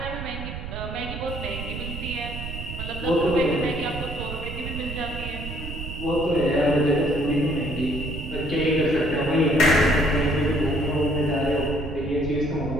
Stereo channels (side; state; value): right; noise; rumble, 8 dB below the sound